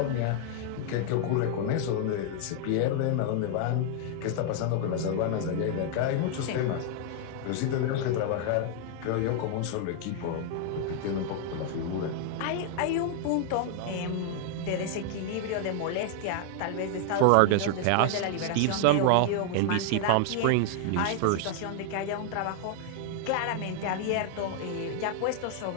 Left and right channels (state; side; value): different; both; correlation 0.00